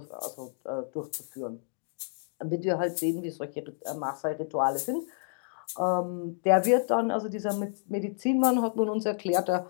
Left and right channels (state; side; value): silent; right; digital silence